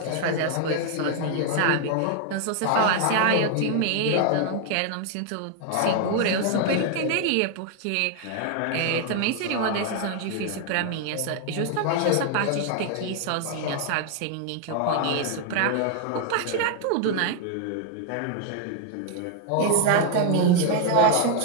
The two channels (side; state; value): both; different; correlation 0.00